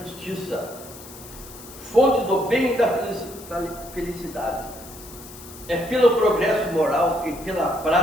fonte do bem e da felicidade. é pelo progresso moral e pela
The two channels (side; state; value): left; noise; hiss, 17 dB below the sound